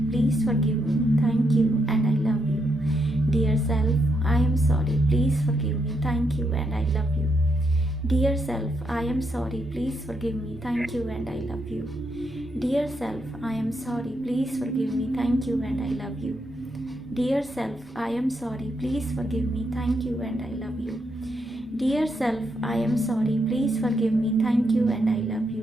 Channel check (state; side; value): normal; both; correlation 0.79